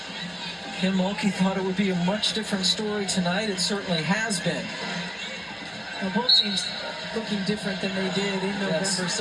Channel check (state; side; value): identical; both; correlation 1.00